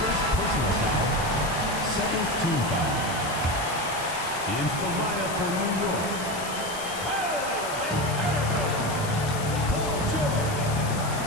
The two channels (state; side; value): noise; left; hiss, 11 dB below the sound